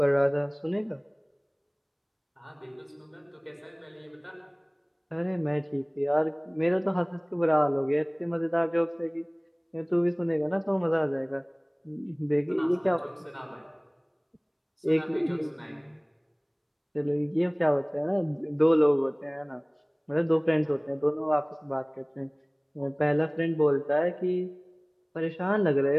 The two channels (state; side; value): identical; both; correlation 1.00